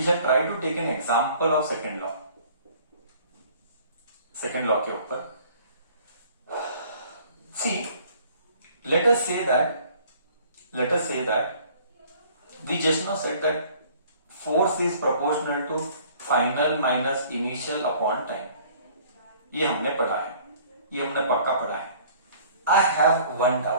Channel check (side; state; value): both; inverted; correlation -0.54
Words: try to take an example of second law के ऊपर. See, let us say that we just now said that force is proportional to final minus initial upon time. ये हमने पढ़ा है, ये हमने पक्का पढ़ा है. I have one